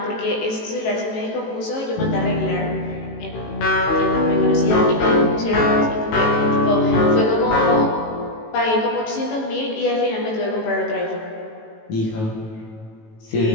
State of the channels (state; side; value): late; right; 18 ms